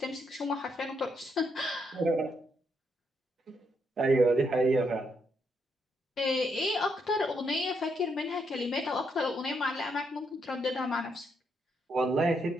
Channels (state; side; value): normal; both; correlation 0.77